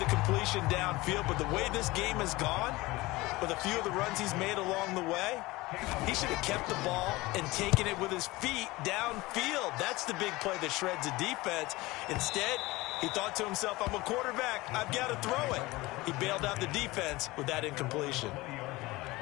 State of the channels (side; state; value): right; quieter; 20.7 dB